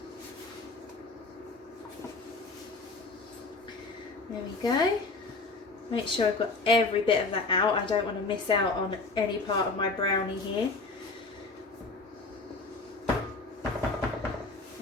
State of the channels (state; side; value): quieter; right; 3.7 dB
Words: There we go. Make sure I've got every bit of that out. I don't want to miss out on any part of my brownie here.